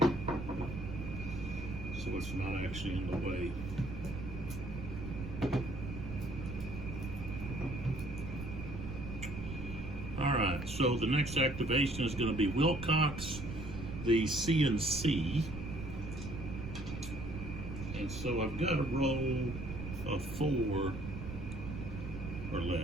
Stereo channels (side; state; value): right; noise; rumble, 8 dB below the sound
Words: so it's not actually in the way. All right. So the next activation is going to be Wilcox, the CNC. And so I've got a roll of 4 or